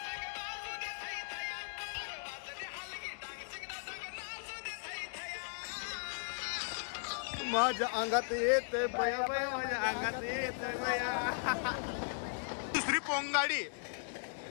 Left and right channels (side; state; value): right; silent; digital silence